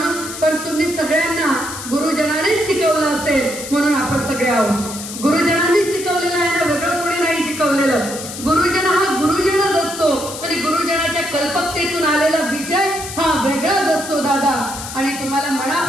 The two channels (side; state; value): left; noise; hiss, 10 dB below the sound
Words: पण तुम्ही सगळ्यांना गुरुजनानेच शिकवलं असेल म्हणून आपण सगळे आहोत. गुरुजनांनीच शिकवलेलं आहे ना, वेगळं कोणी नाही शिकवलेलं. गुरुजन हा गुरुजनच असतो आणि गुरुजनाच्या कल्पकतेतून आलेला विषय हा वेगळाच असतो दादा. आणि तुम्हाला